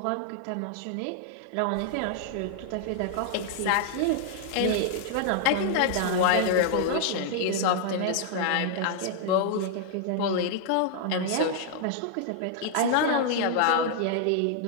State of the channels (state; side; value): different; both; correlation 0.00